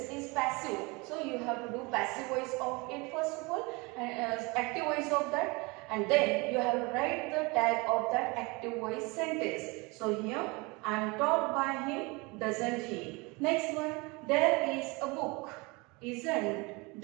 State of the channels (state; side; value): quieter; left; 26.5 dB